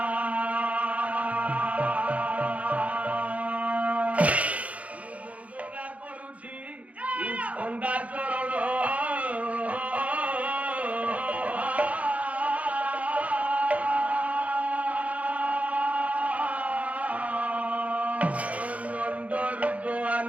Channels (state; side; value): late; left; 0.067 ms